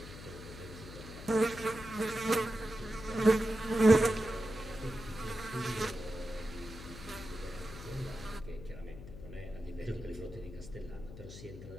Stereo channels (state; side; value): noise; left; hum, 13 dB below the sound